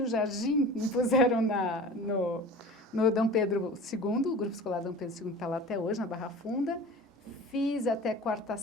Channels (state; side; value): normal; both; correlation 0.38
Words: Jardim, me puseram no Dom Pedro II, o Grupo Escolar Dom Pedro II está lá até hoje, na Barra Funda. Fiz até